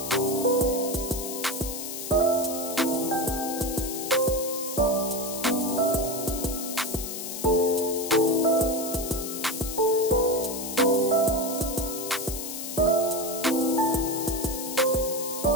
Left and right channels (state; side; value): noise; left; hiss, 7 dB below the sound